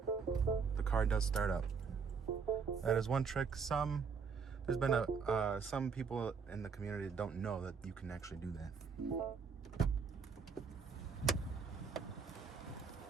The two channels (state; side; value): quieter; left; 5.7 dB